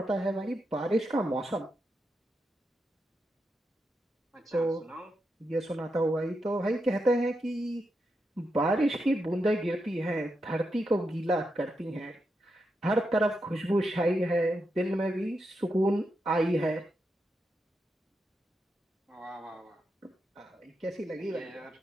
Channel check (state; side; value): normal; both; correlation 0.85